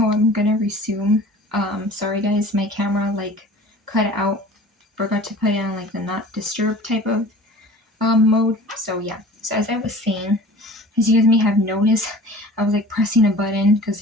I'm gonna resume. Sorry guys, my camera like cut out. Forgot to put it on like the not disturb type of mode. So yeah. So as I was saying, as you guys may have noticed, I was like pressing a button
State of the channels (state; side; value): normal; both; correlation 0.43